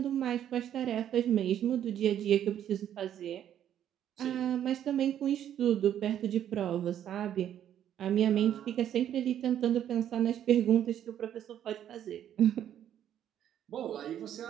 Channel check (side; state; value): left; quieter; 10.4 dB